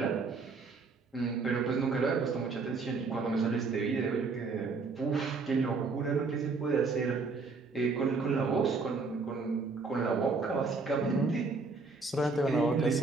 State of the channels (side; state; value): left; quieter; 4.2 dB